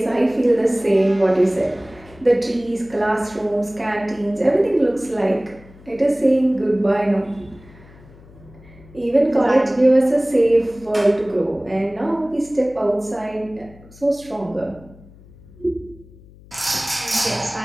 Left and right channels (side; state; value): left; noise; hum, 23 dB below the sound